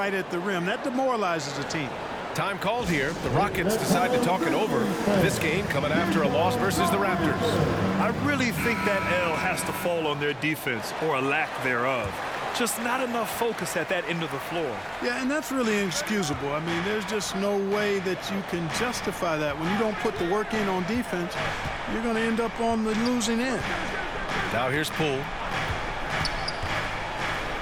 at the rim. That demoralizes a team. Time called here. The Rockets decide to talk it over. This game coming after a loss versus the Raptors. I really think that L has to fall on their defense, or a lack thereof. Just not enough focus at that end of the floor. Yeah, and that's really inexcusable. I mean, there's just no way that you can justify that. When you don't put the work in on defense, you're going to end up on the losing end. Now here's Poole.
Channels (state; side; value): identical; both; correlation 1.00